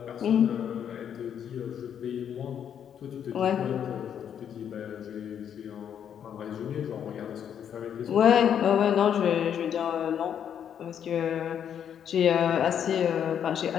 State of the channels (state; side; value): quieter; right; 8.8 dB